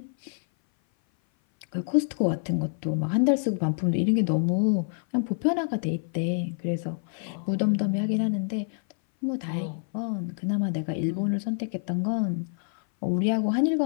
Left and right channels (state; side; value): silent; right; 57 dB below the other